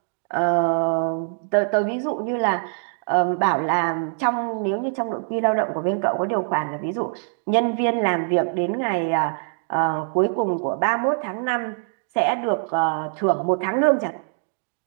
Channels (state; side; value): silent; left; 63 dB below the other